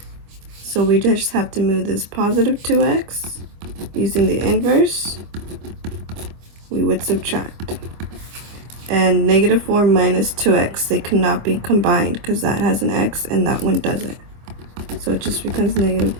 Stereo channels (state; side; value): late; left; 25 ms